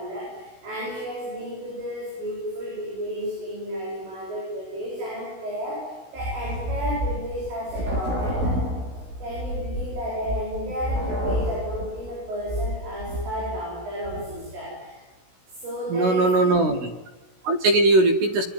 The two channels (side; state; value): left; late; 16 ms